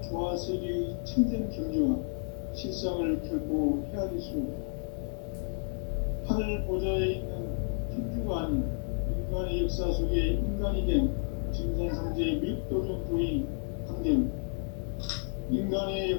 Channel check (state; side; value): silent; right; 56 dB below the other